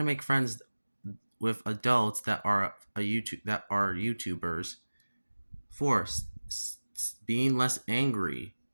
to make friends with adults that are YouTubers. 4. Being less angry.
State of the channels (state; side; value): inverted; both; correlation -1.00